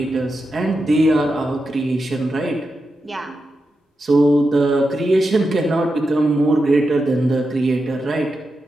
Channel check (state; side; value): normal; both; correlation 0.89